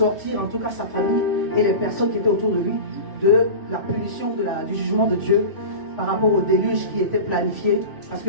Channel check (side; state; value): right; late; 3.4 ms